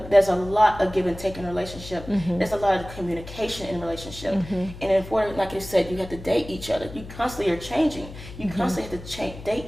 lot of give and take in a relationship. There's a lot of communication in a relationship. And in order, like you said, you have to date each other. You constantly are changing. You constantly have to date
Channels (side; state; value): left; noise; hum, 14 dB below the sound